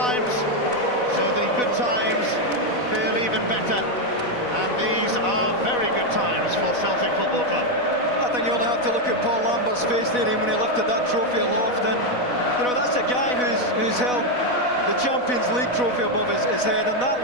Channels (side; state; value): right; late; 4.0 ms